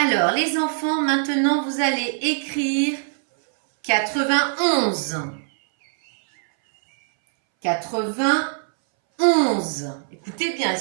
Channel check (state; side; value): silent; left; 63 dB below the other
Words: les enfants, maintenant, vous allez écrire 91. 91. Écoutez bien,